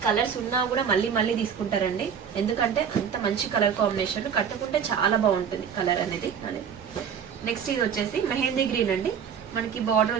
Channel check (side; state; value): left; quieter; 7.5 dB